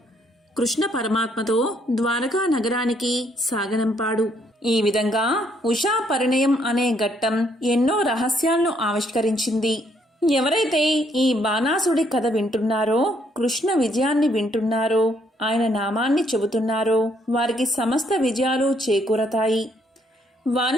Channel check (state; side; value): normal; both; correlation 0.70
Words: కృష్ణ పరమాత్మతో ద్వారకా నగరానికి సాగనంపాడు. ఈ విధంగా ఉషా పరిణయం అనే ఘట్టం ఎన్నో రహస్యాలను ఆవిష్కరించింది. ఎవరైతే ఈ బాణాసుడి కథ వింటున్నారో, కృష్ణ విజయాన్ని వింటున్నారో, ఆయన నామాన్ని చెబుతున్నారో వారికి సమస్త విజయాలు చేకూరతాయి.